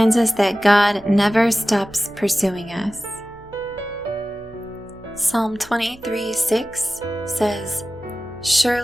us that God never stops pursuing us. Psalm 23:6 says,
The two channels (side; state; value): right; noise; hum, 24 dB below the sound